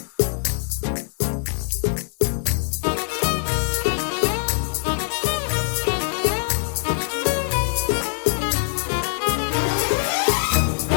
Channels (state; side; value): silent; right; digital silence